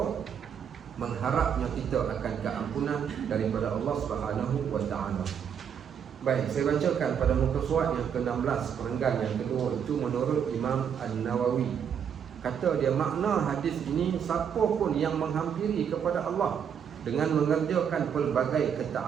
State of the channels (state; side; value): quieter; left; 7.9 dB